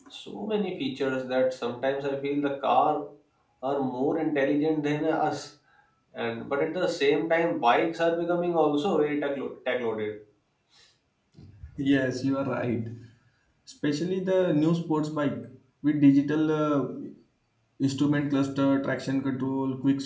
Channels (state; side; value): identical; both; correlation 1.00